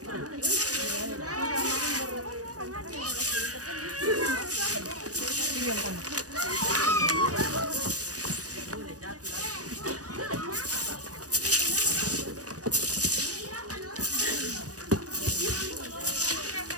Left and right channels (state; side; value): late; left; 0.67 ms